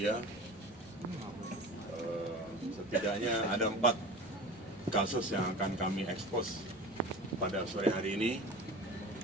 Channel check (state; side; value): noise; right; rumble, 25 dB below the sound